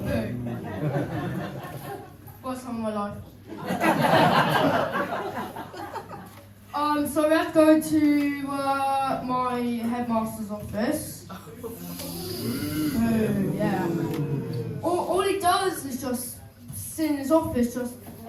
boo. Worst time of my life. So we had to go to my headmaster's office. Boo, yeah. All he does is just sit in his office, just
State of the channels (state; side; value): identical; both; correlation 1.00